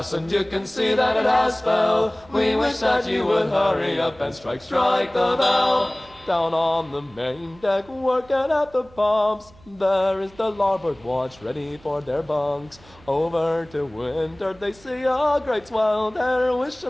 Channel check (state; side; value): noise; right; hum, 25 dB below the sound